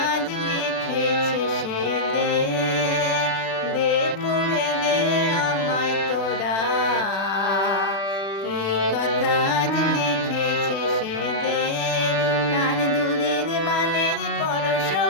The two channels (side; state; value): right; late; 36 ms